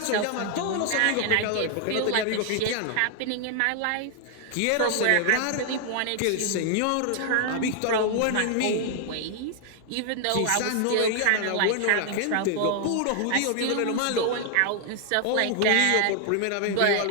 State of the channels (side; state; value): both; different; correlation 0.00